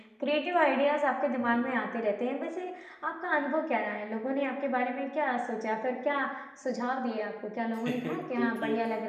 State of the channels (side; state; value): both; identical; correlation 1.00